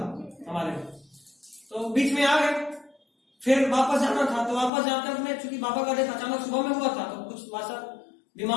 हमारे, तो बीच में आ गए, फिर वापस जाना था, तो वापस जाते अपने, चूंकि बाबा का डेथ अचानक सुबह में हुआ था, तो कुछ वैसा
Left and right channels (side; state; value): right; drops out; at 4.7 s